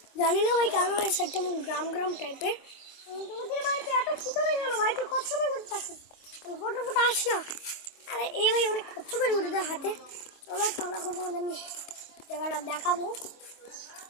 জানি না ভাই কেন এই সাইডটা গ্রাম টাইপের। তোমাদের বাড়িতে এত ফুটো নেই কেন ভাই, তুই কত সময় করতে আসিস, ফটো আস না। আরে এই ভাই অনেক কষ্ট করে উঠে দেয় হাতে। চলো তাহলে এখন তোমাদের নিয়ে জায়গাটা দেখাবো।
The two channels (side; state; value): right; late; 25 ms